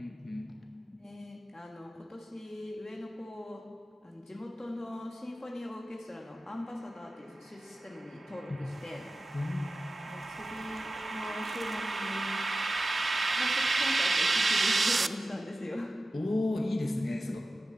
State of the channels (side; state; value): both; normal; correlation 0.95